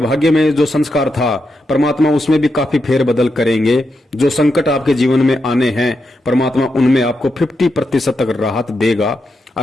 में जो संस्कार था परमात्मा उसमें भी काफी फेरबदल करेंगे। जो संकट आपके जीवन में आने हैं परमात्मा उनमें आपको 50% तक राहत देगा,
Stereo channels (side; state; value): both; normal; correlation 0.85